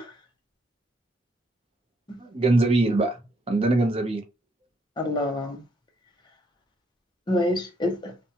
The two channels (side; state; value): both; normal; correlation 0.72